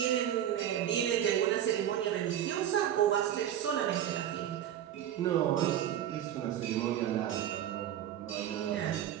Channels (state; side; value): quieter; left; 10.8 dB